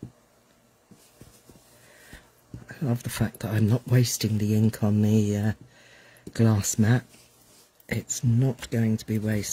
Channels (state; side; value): identical; both; correlation 1.00